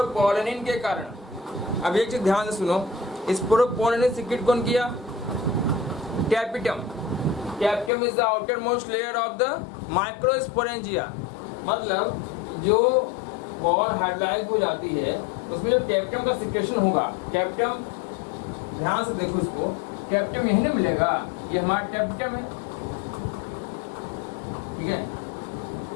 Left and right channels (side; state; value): right; drops out; at 7.9 s